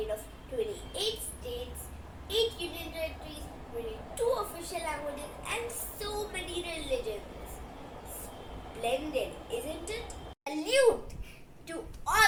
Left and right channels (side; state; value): both; identical; correlation 1.00